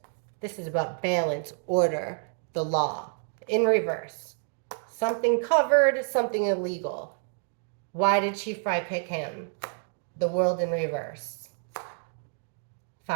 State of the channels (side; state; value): left; silent; digital silence